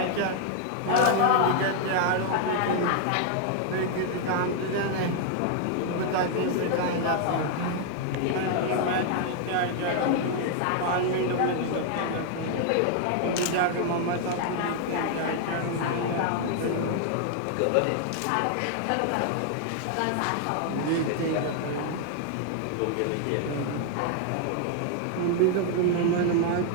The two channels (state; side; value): different; both; correlation 0.00